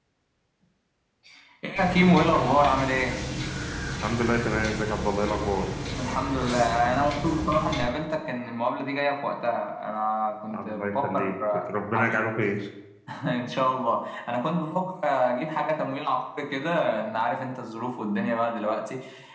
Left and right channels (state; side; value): identical; both; correlation 1.00